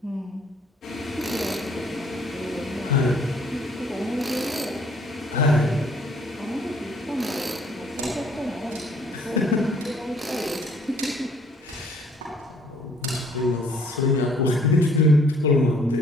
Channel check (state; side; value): normal; both; correlation 0.61